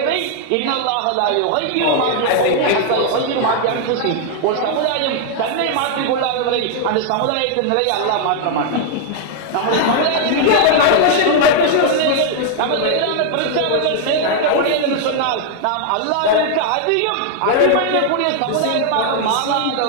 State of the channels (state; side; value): different; both; correlation 0.00